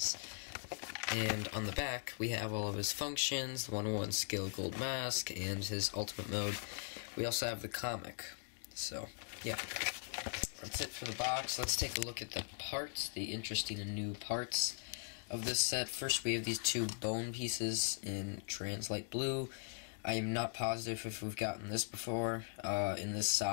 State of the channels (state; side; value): silent; right; digital silence